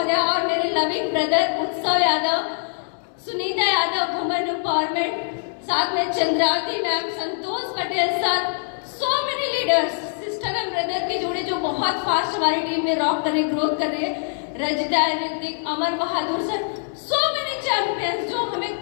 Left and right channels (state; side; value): silent; right; digital silence